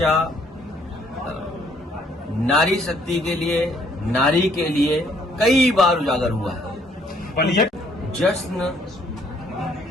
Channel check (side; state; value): both; normal; correlation 0.65